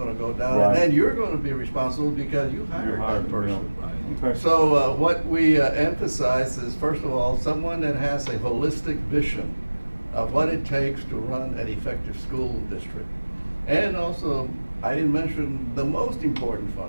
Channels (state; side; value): inverted; both; correlation -1.00